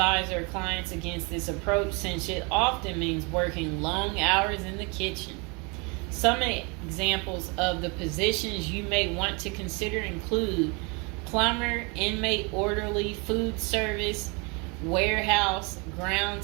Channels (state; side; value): quieter; left; 31.0 dB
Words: our clients against this approach since it often means working long hours in the kitchen. Some examples of the positions you may want to consider include plumber, inmate orderly, food service, warehouse,